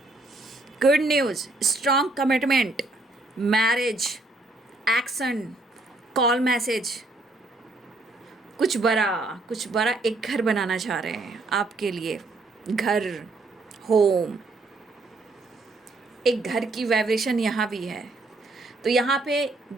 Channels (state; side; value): quieter; left; 3.0 dB